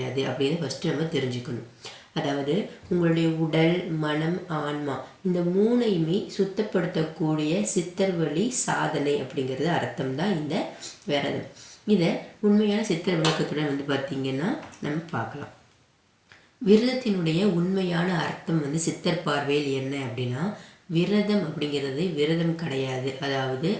அப்படின்னு ஃபஸ்ட்டு நம்ம தெரிஞ்சுக்கணும். அதாவது உங்களுடைய உடல், மனம், ஆன்மா இந்த மூணையுமே சுத்தப்படுத்தக்கூடிய சித்தர் வழி சாதனை அப்படிங்கிறது அர்த்தம் தான் இந்த விரதம். இதை உண்மையான சித்தர் விளக்கத்துடன் பார்த்தீங்கன்னா நம்ம பார்க்கலாம். விரதத்தினுடைய உண்மையான அர்த்தம் சித்தர் பார்வையில் என்ன அப்படின்னா, விரதம் அப்படிங்கிறது விரதம் கிடையாது. அதாவது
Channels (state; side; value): identical; both; correlation 1.00